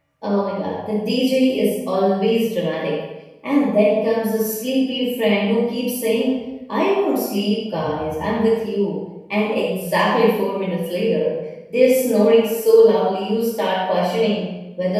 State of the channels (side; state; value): both; identical; correlation 1.00